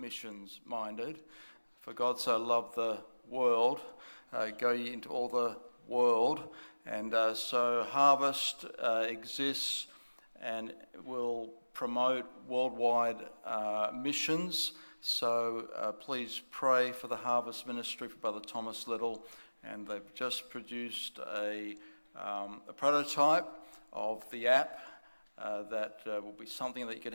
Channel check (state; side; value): inverted; both; correlation -1.00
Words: minded. For God so loved the world, go ye into all the world. And so Harvest exists and will promote worldwide missions. So please pray for the Harvest Ministry for Brother Thomas Liddle. And they've just produced a prototype of the app that will be something that you can